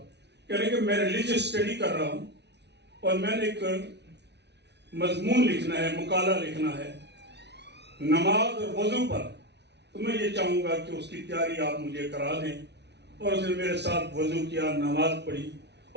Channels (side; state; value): left; late; 0.50 ms